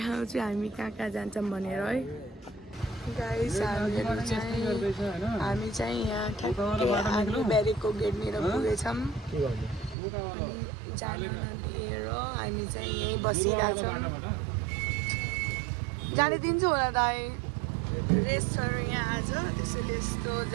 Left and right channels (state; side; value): drops out; left; at 10.0 s